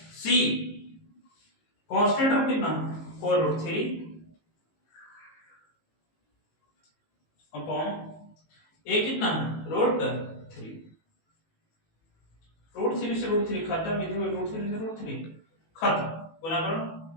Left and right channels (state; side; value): late; right; 18 ms